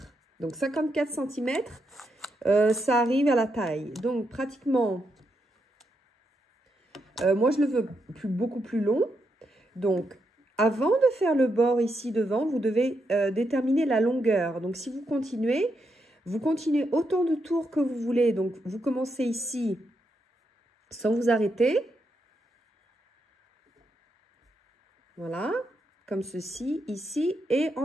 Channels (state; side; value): normal; both; correlation 0.82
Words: Donc, 54 cm, ça arrive à la taille. Donc, pratiquement, moi, je le veux beaucoup plus long. Donc, avant de faire le bord ici devant, vous devez déterminer la longueur. Donc, si vous continuez autant de tours que vous voulez. Donc, vous commencez ici sans vous arrêter. Voilà, comme ceci, ici, et